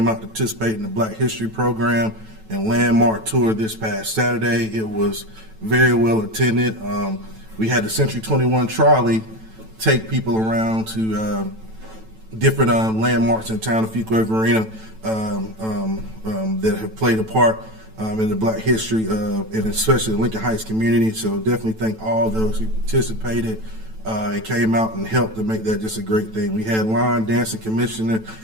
out to participate in the Black History Program and Landmark Tour this past Saturday. It was very well attended. We had the Century 21 trolley take people around to different landmarks in town of Fuquay-Varina that have played a part in the Black history, and especially the Lincoln Heights community. So definitely thank all those who participated and came out and helped to make that just a great thing. We had line dancing commissioner,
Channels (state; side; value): late; left; 9.1 ms